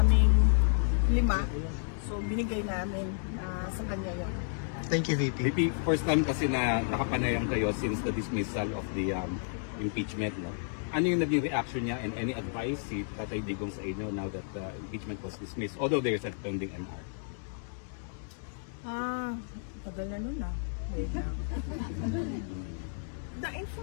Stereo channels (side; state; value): right; silent; digital silence